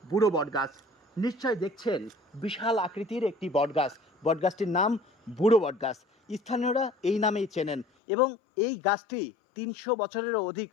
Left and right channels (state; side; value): drops out; right; at 7.9 s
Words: বুড়ো বটগাছ। নিশ্চয় দেখছেন বিশাল আকৃতির একটি বটগাছ। বটগাছটির নাম বুড়ো বটগাছ। স্থানীয়রা এই নামেই চেনেন এবং এই গাছটি ৩০০ বছরেরও অধিক